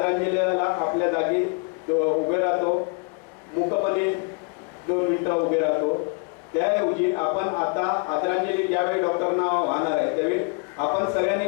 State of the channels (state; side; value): quieter; right; 34.8 dB